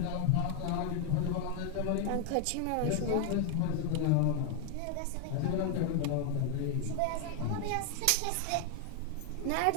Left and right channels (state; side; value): different; both; correlation 0.00